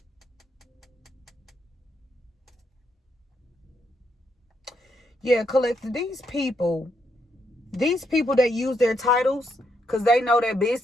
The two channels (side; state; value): both; normal; correlation 0.77